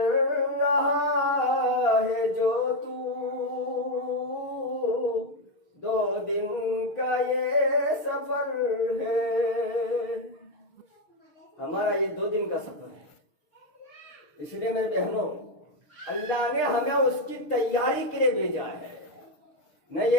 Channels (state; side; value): late; right; 6.6 ms